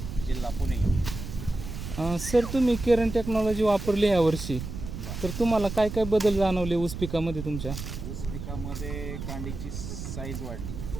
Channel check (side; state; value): right; noise; rumble, 8 dB below the sound